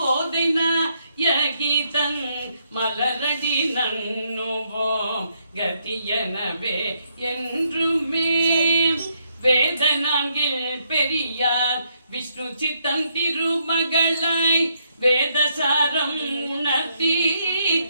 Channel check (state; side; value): inverted; both; correlation -0.75